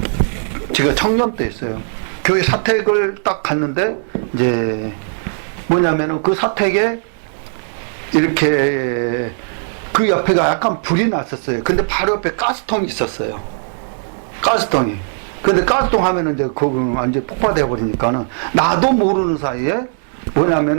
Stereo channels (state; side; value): silent; left; digital silence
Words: 제가 청년 때 있어요. 교회 사택을 딱 갔는데, 이제 뭐냐면은 그 사택에 이렇게 그 옆에가 약간 불이 났었어요. 근데 바로 옆에 가스통이 있었어요. 가스통이. 근데 가스통 하면은 이제 그거 완전 폭파되어 버리니까는, 나도 모르는 사이에